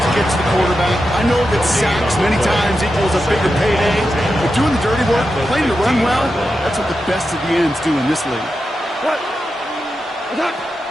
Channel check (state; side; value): normal; both; correlation 0.89